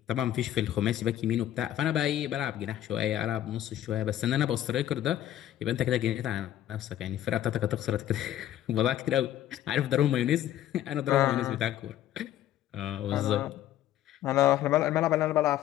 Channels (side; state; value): right; quieter; 12.3 dB